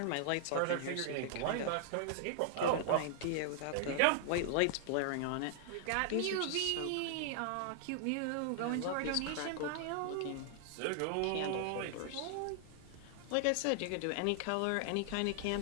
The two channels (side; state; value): both; different; correlation -0.01